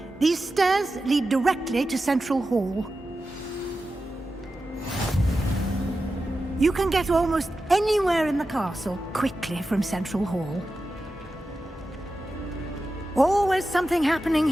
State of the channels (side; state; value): both; normal; correlation 0.92